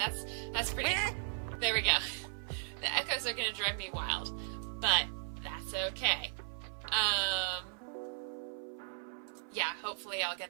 that's pretty. There we go. The echoes are gonna drive me wild, but that's okay. Yeah, hopefully I'll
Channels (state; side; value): silent; left; 53 dB below the other